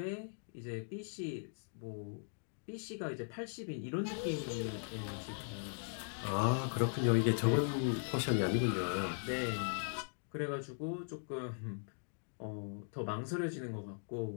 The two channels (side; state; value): right; silent; digital silence